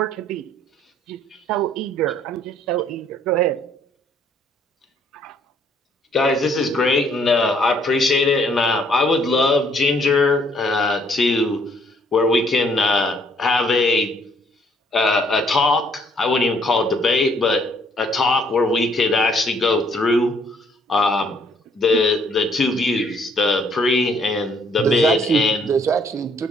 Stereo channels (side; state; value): both; normal; correlation 0.65